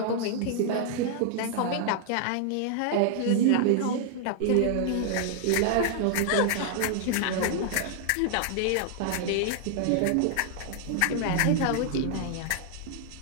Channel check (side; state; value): both; different; correlation 0.00